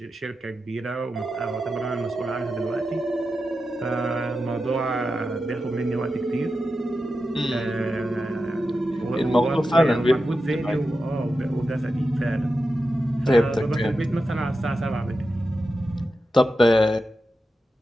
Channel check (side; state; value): both; normal; correlation 0.90